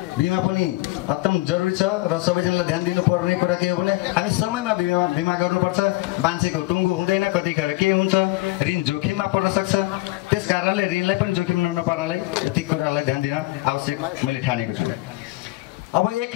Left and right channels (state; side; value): quieter; right; 20.3 dB